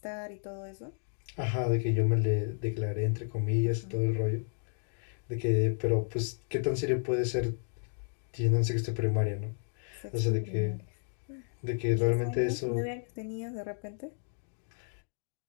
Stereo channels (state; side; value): silent; right; 56 dB below the other